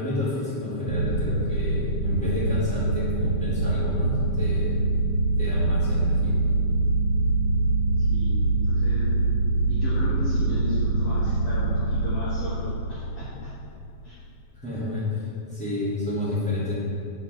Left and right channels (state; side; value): late; right; 7.7 ms